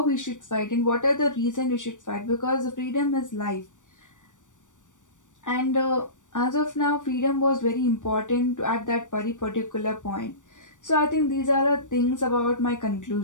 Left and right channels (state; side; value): late; right; 0.87 ms